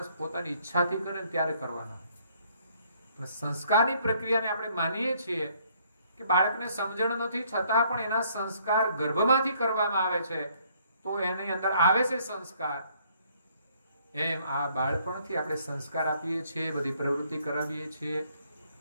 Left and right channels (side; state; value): both; inverted; correlation -0.65